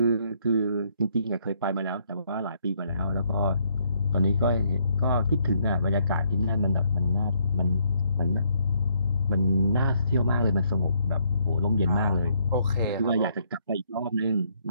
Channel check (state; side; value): inverted; both; correlation -0.70